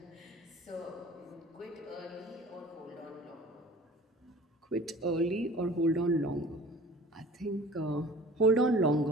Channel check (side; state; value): both; normal; correlation 0.45